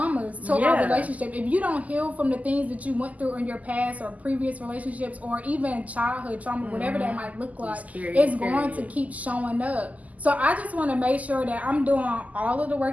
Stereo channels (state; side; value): late; left; 0.075 ms